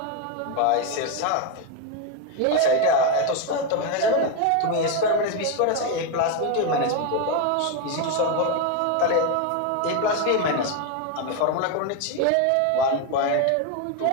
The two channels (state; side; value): different; both; correlation 0.02